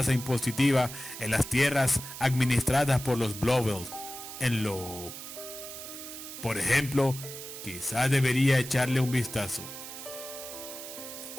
impositiva en las tierras administradas por los Blobel. Por ejemplo, quizá debería echarle un vistazo.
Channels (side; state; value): right; noise; hiss, 11 dB below the sound